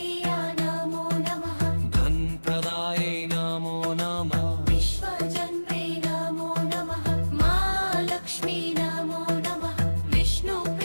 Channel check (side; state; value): both; inverted; correlation -1.00